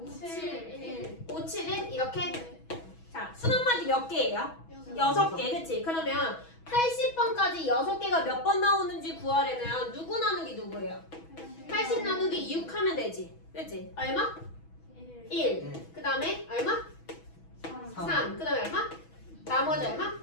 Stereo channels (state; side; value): late; right; 6.1 ms